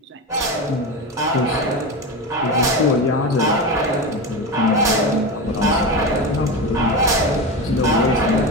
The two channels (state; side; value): normal; both; correlation 0.21